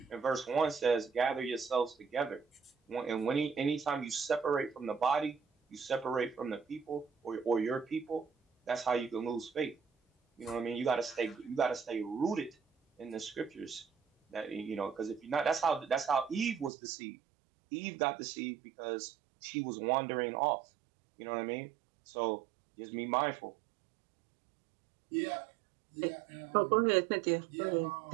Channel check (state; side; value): drops out; left; at 16.7 s